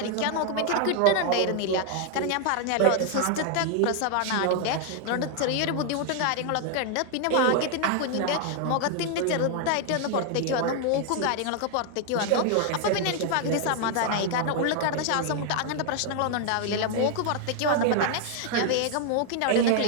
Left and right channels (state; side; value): different; both; correlation 0.00